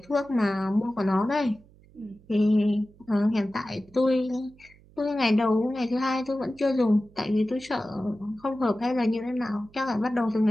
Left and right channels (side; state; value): right; noise; hum, 27 dB below the sound